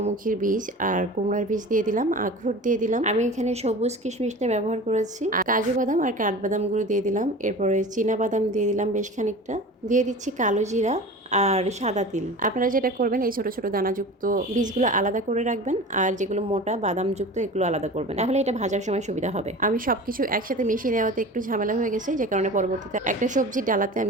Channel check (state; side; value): normal; both; correlation 0.36